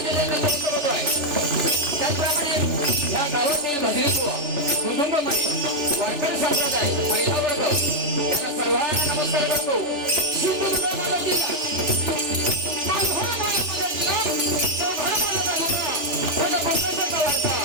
त्याचप्रमाणे या गावातील भजनीत्व कुटुंबमध्ये वारकरी संप्रदाय महिला वर्ग यांना सर्वांना नमस्कार करतो.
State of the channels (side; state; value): left; late; 2.9 ms